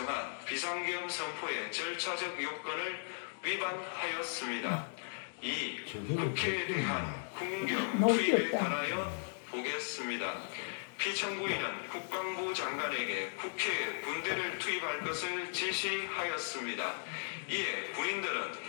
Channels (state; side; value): silent; right; digital silence